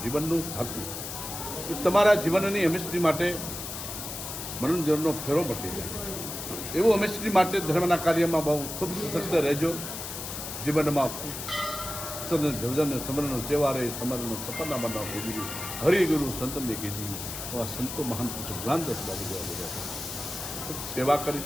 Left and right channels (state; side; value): noise; left; hiss, 7 dB below the sound